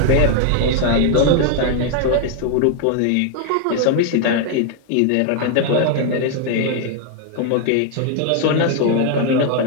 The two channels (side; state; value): both; different; correlation 0.00